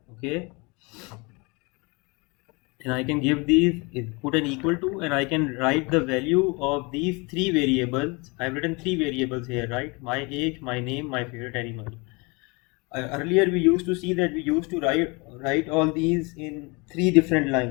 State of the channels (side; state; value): right; quieter; 28.4 dB